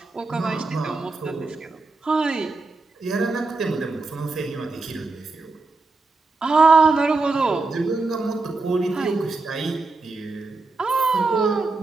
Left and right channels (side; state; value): left; quieter; 3.6 dB